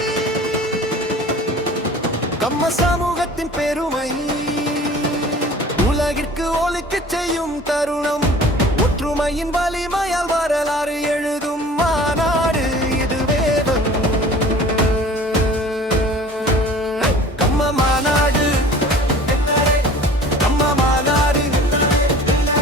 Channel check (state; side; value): normal; both; correlation 0.45